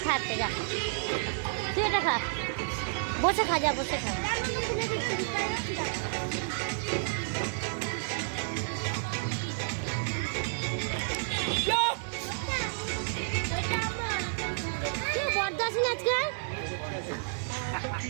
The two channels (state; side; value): silent; left; digital silence